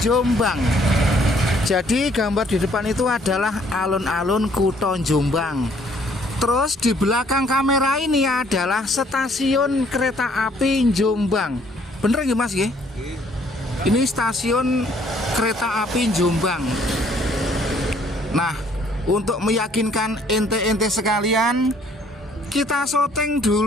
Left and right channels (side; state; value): both; normal; correlation 0.63